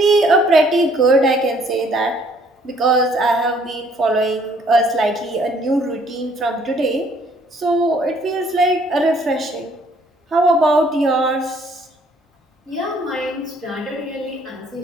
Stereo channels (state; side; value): normal; both; correlation 0.62